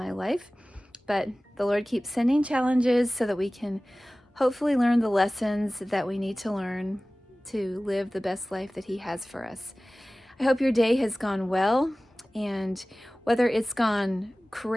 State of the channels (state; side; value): normal; both; correlation 0.98